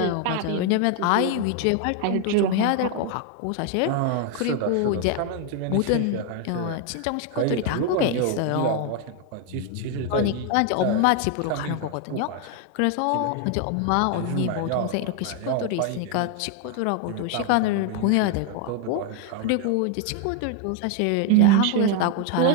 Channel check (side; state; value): both; different; correlation 0.01